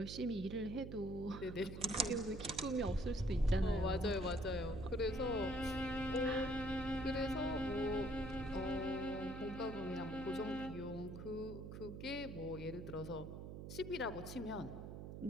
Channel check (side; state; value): right; noise; hum, 8 dB below the sound